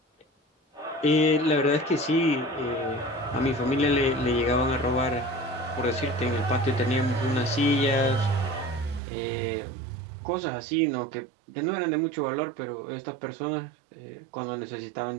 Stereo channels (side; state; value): left; drops out; at 9.0 s